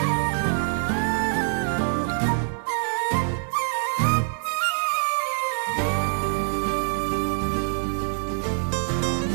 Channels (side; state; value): left; silent; digital silence